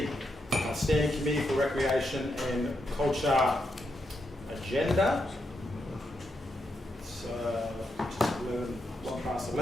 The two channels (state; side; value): normal; both; correlation 0.83